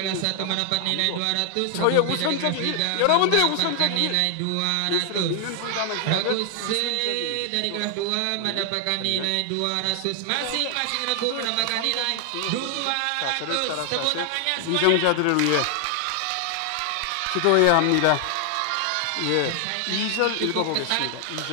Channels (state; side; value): different; both; correlation 0.00